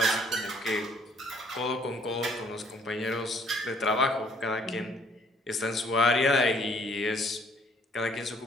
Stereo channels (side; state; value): both; normal; correlation 0.62